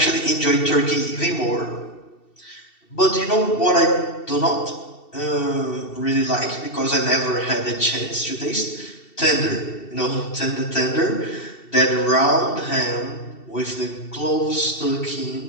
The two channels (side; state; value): right; late; 2.7 ms